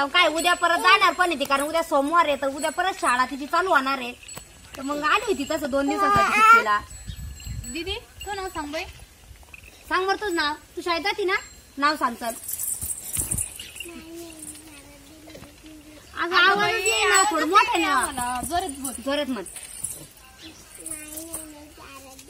काय उद्या परत जाणार पण येते, कारण उद्या सोमवार आहे, तर उद्या परत शाळा तिची चालू होणार आहे। तर मग आली होती तसं 2 दिवसासाठी सुट्टीला। दीदी तू नाव सांग बाई, सांग बरं तुझं नाव, तू शाळेत जाती ना, नाव सांग चल। अगं आवाज येईना, थोडं मोठं ना, जोरात म्हण।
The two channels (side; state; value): both; identical; correlation 1.00